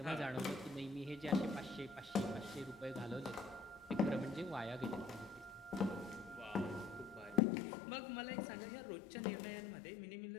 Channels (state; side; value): drops out; right; at 7.4 s